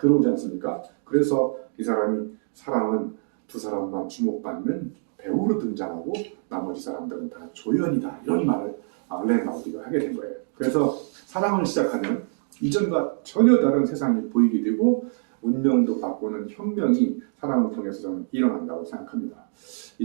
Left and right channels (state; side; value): silent; left; digital silence